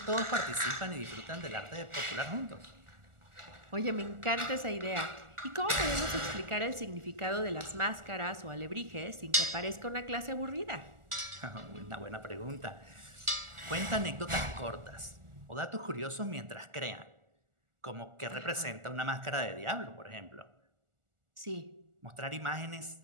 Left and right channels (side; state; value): left; late; 1.4 ms